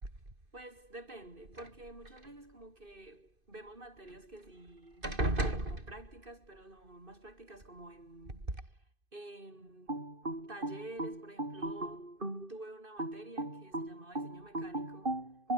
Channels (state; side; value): late; left; 2.5 ms